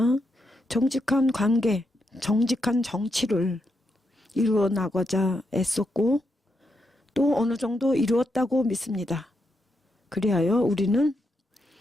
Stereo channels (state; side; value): normal; both; correlation 0.82